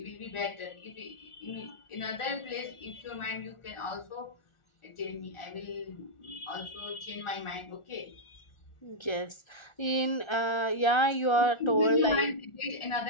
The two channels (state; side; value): late; right; 1.4 ms